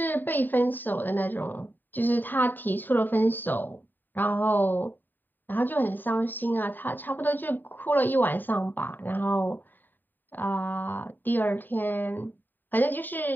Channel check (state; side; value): late; right; 0.091 ms